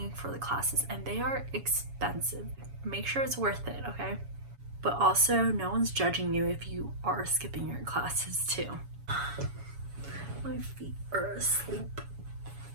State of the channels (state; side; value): late; left; 7.1 ms